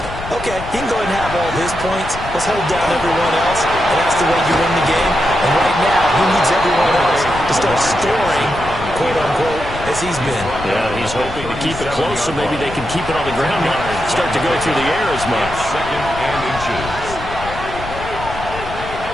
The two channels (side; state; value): left; noise; rumble, 11 dB below the sound